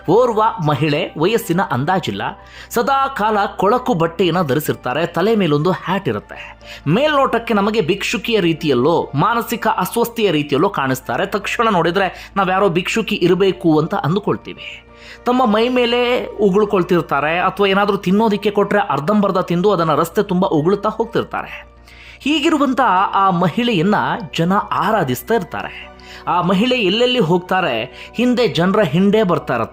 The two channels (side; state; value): both; identical; correlation 1.00